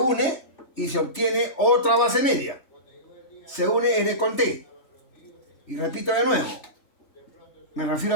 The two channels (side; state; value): right; late; 3.2 ms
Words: y se obtiene otra base media. Se une N con T. Y repito de nuevo. Me refiero